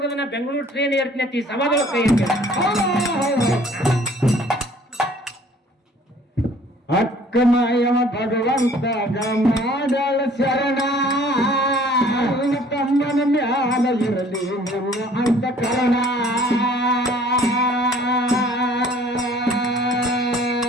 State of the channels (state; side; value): normal; both; correlation 0.54